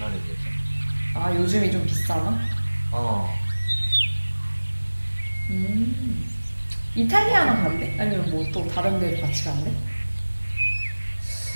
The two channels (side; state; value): both; inverted; correlation -1.00